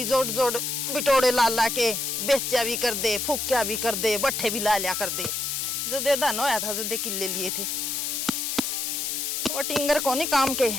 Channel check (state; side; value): noise; left; hiss, 1 dB below the sound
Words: जोड़ जोड़ बिटोड़े ला ला के बेचा भी कर दे, फूक्या भी कर दे, बट्ठे भी ला लिया कर दे, जदे धन होया था जदे किले लिए थे। वो टिंगर को नहीं काम के